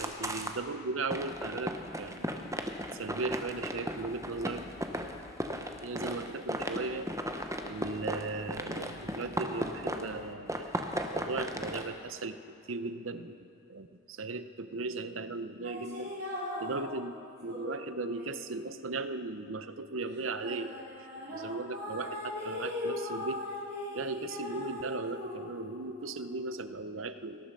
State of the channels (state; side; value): normal; both; correlation 0.19